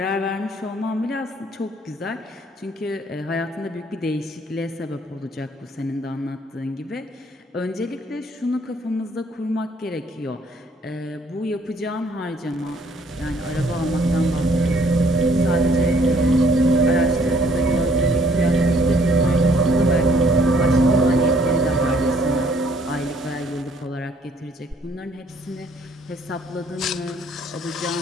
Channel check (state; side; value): normal; both; correlation 0.62